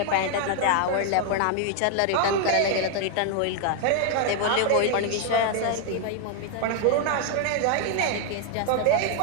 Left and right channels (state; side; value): different; both; correlation 0.00